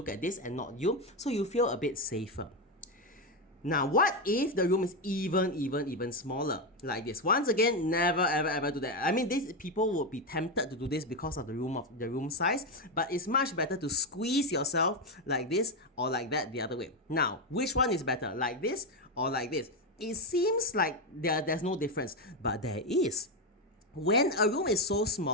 at this and not you, so you feel a bit safer. Now, what if the room is even smaller? Like this. Once again, never ever do that. I mean, these people would be tempted to do this because of the room size, but it's much better to squeeze yourself like this or like that the other way. Now, which one is better? Like this or like this? It seems like there's no difference, but there is. When a room is so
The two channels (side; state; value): both; normal; correlation 0.09